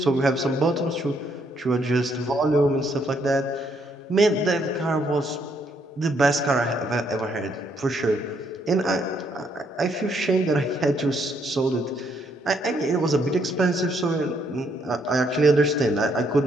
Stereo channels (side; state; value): both; normal; correlation 0.72